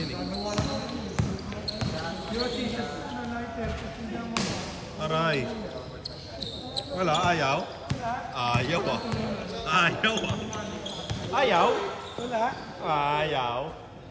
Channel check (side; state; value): both; identical; correlation 1.00